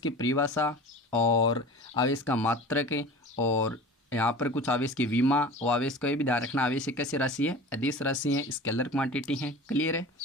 परिभाषा और आवेश का मात्रक और यहाँ पर कुछ आवेश की विमा और आवेश का भी ध्यान रखना, आवेश एक कैसी राशि है, अदिश राशि है, स्केलर क्वांटिटी है। क्लियर है।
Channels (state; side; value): normal; both; correlation 0.37